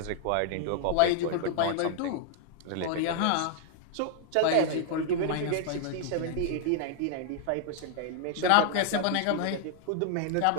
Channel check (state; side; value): different; both; correlation -0.01